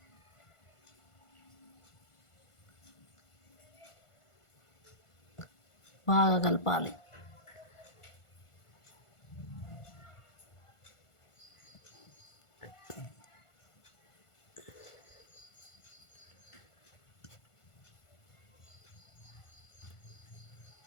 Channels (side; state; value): right; late; 1.5 ms